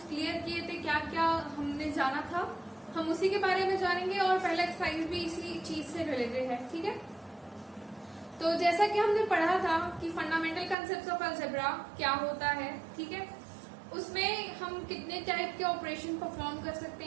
क्लियर किए थे, क्या क्या हमने जाना था, हम उसी के बारे में जानेंगे और पहला एक्सरसाइज भी इसी चीज से रिलेटेड है। ठीक है, तो जैसा कि हमने पढ़ा था कि फंडामेंटल कंसेप्ट्स ऑफ अलजेब्रा क्या होता है, ठीक है, उसमें हम कितने टाइप के ऑपरेशन परफॉर्म कर सकते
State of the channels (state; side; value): drops out; left; at 10.8 s